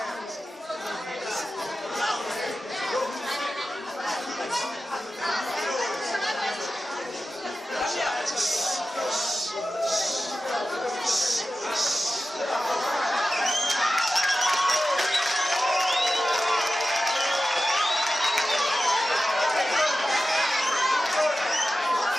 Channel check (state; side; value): normal; both; correlation 0.94